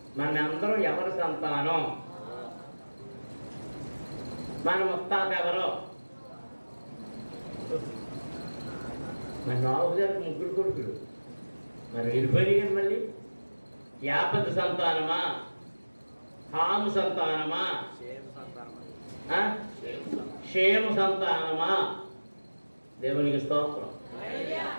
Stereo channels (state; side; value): inverted; both; correlation -1.00